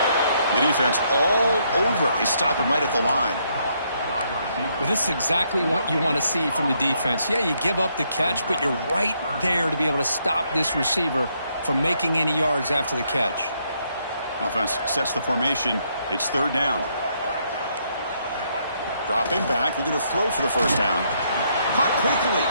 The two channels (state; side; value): inverted; both; correlation -0.73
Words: The defense all over it. They stop him right at the line. Well, this is exactly what you want to see from the defense. Yeah, you give up the catch, but you're right there to be able to stop this receiver from making any yards after the catch. Offense sets the formation. It's 3rd down. Dropping back, looking to throw for the first down. Caught quickly.